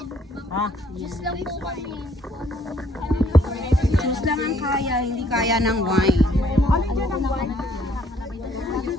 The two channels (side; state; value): both; normal; correlation 0.64